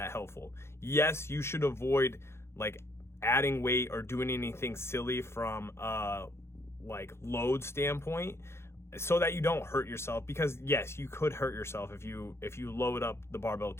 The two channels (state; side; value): late; right; 0.12 ms